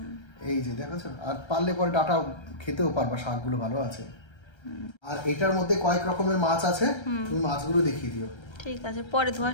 এই যে দেখেছো, আর পারলে পরে ডাটা খেতেও পারবা, শাকগুলো ভালো আছে। আর এটার মধ্যে কয়েক রকমের মাছ আছে, তুমি মাছগুলো দেখিয়ে দিও। ঠিক আছে, পরে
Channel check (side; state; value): right; late; 1.3 ms